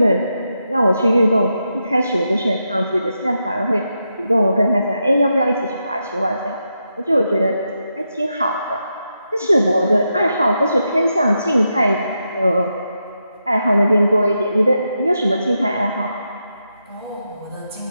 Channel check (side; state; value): both; inverted; correlation -0.85